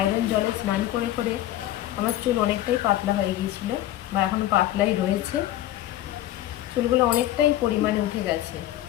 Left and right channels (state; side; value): quieter; right; 13.7 dB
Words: জলে স্নান করে করে আমার চুল অনেকটাই পাতলা হয়ে গিয়েছিল, বা এখনও পাতলাই রয়েছে। চুলগুলো অনেকটাই পরিমাণে উঠে গেছে।